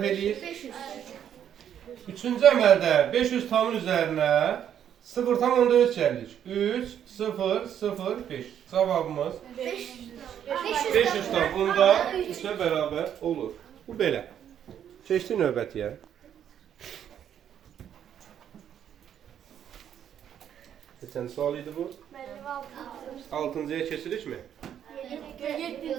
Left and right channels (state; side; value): quieter; left; 9.5 dB